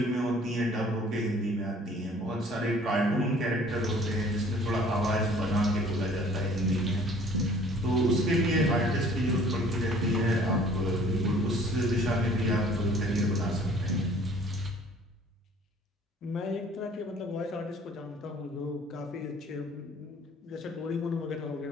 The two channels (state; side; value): normal; both; correlation 0.53